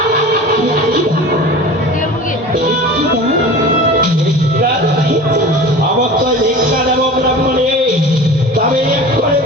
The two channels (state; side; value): normal; both; correlation 0.37